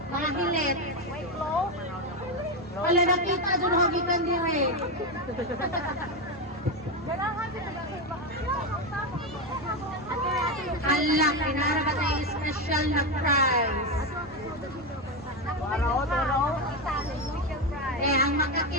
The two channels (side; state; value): both; normal; correlation 0.11